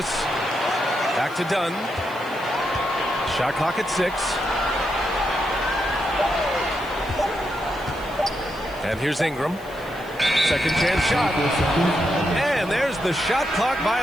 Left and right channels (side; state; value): left; noise; hiss, 23 dB below the sound